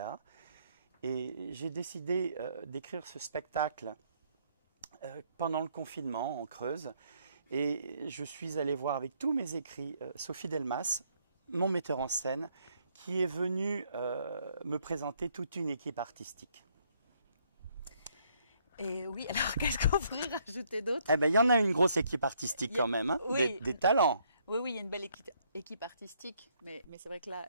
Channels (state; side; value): inverted; both; correlation -0.69